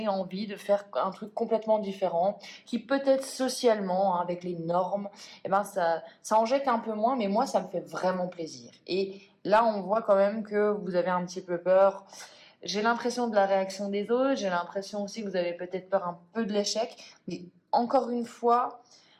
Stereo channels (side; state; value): both; identical; correlation 1.00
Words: envie de faire un truc complètement différent, qui peut-être socialement, hein, avec les normes, et ben ça en jette un peu moins, mais moi ça me fait vraiment plaisir. Et là on voit quand même que vous avez un petit peu peur. J'ai l'impression de la réaction des autres, j'ai l'impression aussi que vous avez peut-être peur un peu de l'échec, mais encore une fois,